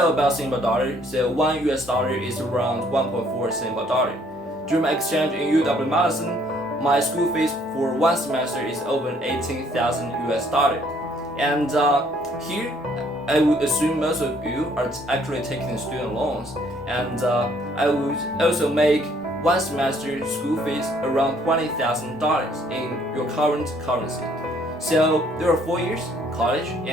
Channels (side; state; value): both; normal; correlation 0.63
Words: about Singapore dollar, so $1 is around 1.4 Singapore dollar. During my exchange in UW Madison, my school fees for one semester is over 18,000 dollar. And here, I would assume most of you are actually taking student loans, and I would also make one semester school fees around $20,000 in your current currency. So there are 4 years college,